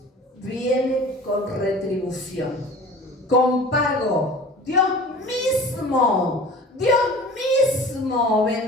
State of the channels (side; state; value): both; normal; correlation 0.41